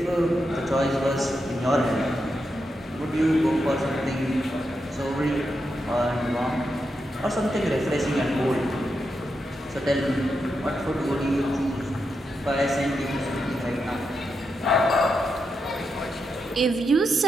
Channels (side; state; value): both; normal; correlation 0.85